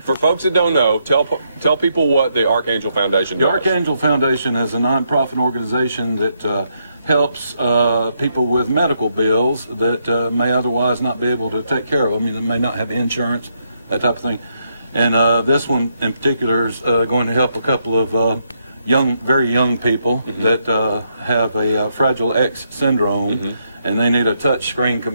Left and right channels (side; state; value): both; inverted; correlation -0.78